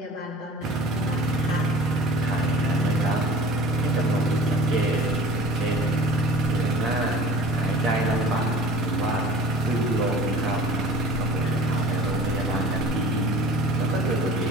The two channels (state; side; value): normal; both; correlation 0.42